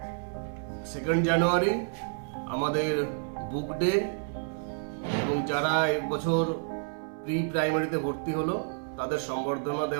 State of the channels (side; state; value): left; silent; 58 dB below the other